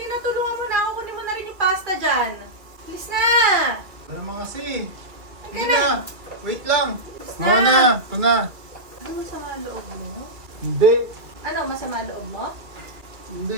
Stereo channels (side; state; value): left; late; 2.3 ms